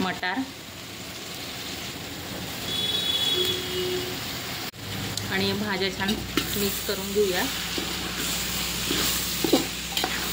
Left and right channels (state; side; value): identical; both; correlation 1.00